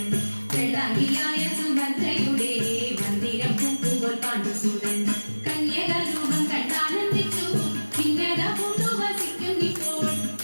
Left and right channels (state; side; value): inverted; both; correlation -1.00